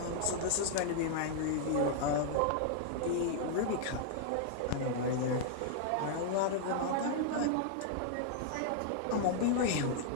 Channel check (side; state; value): both; different; correlation -0.01